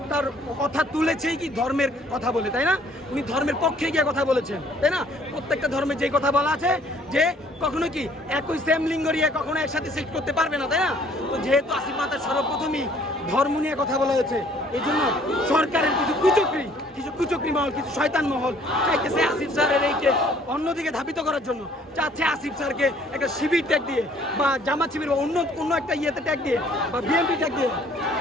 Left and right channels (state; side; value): normal; both; correlation 0.59